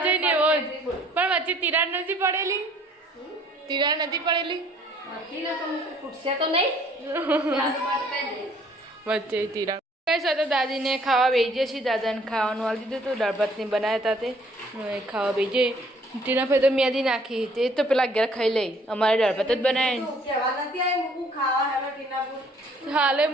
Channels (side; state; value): both; normal; correlation 0.59